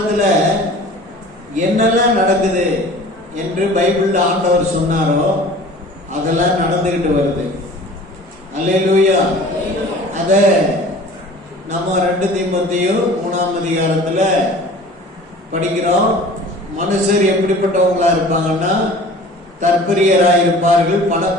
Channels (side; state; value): both; normal; correlation 0.44